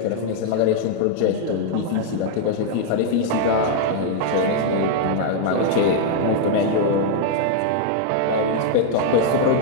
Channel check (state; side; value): different; both; correlation -0.01